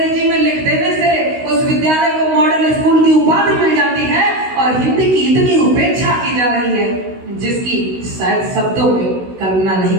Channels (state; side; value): late; left; 16 ms